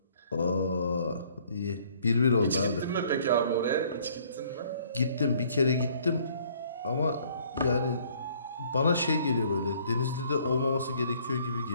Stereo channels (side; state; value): both; inverted; correlation -0.61